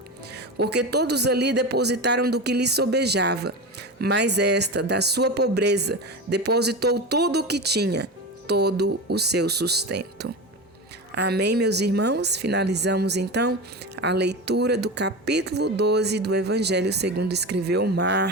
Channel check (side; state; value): both; normal; correlation 0.24